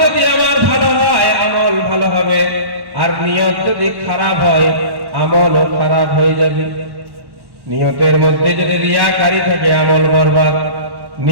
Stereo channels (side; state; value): left; late; 1.1 ms